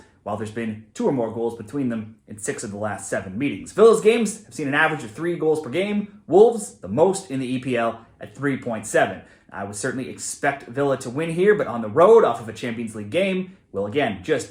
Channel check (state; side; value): identical; both; correlation 1.00